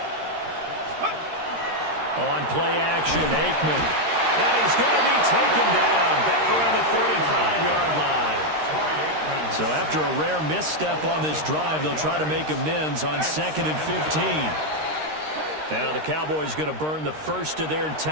On play action, Aikman. And he's going to be taken down back around the 35-yard line. So after a rare misstep on this drive, they'll try to make amends on 2nd and 15. Now the Cowboys going to burn the first of their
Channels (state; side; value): late; left; 13 ms